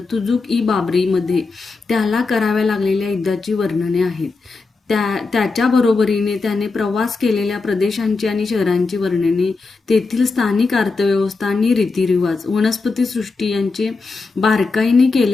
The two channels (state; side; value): quieter; right; 4.0 dB